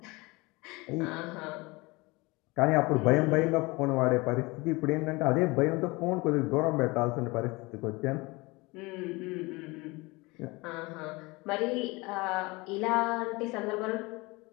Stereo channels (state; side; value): quieter; right; 24.1 dB